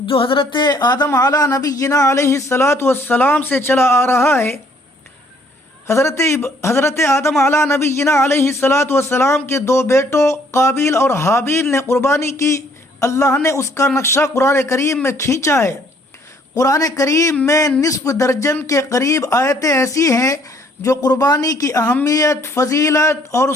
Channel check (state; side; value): normal; both; correlation 0.63